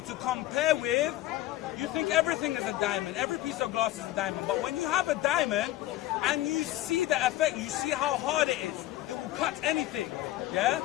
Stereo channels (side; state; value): right; quieter; 15.4 dB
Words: to compare with, you think everything is a diamond. Every piece of glass is a diamond. But when you have a diamond and you see the effect, you see how hard it is. It will cut anything. Yeah.